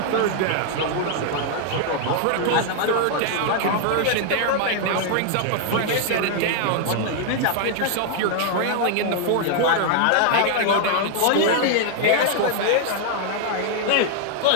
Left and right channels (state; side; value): different; both; correlation 0.00